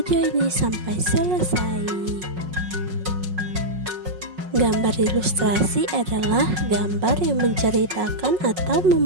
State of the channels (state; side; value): late; left; 5.5 ms